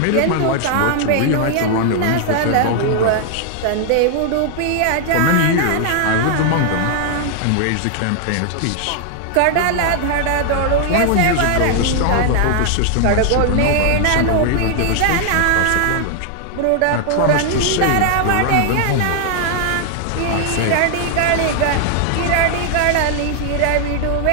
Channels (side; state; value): both; different; correlation 0.00